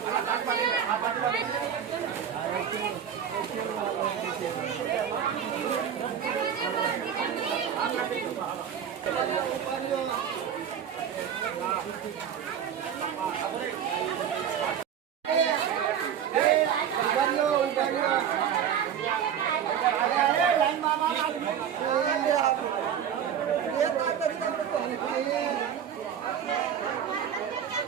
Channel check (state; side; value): quieter; left; 8.7 dB